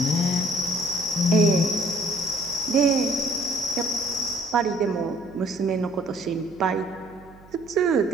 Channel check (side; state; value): right; noise; hum, 24 dB below the sound